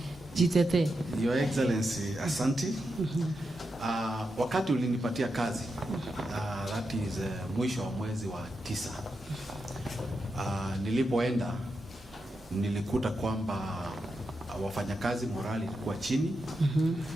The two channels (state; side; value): normal; both; correlation 0.87